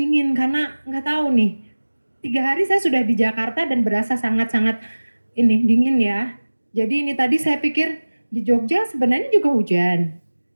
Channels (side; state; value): both; inverted; correlation -1.00